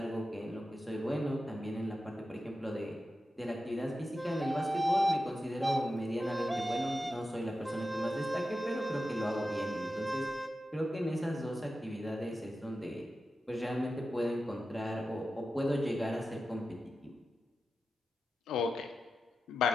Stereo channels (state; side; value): normal; both; correlation 0.91